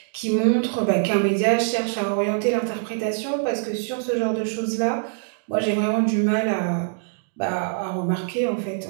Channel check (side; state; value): left; silent; digital silence